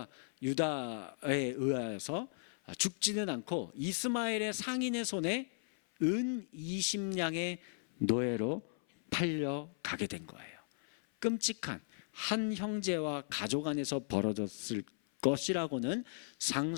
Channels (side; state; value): right; silent; 54 dB below the other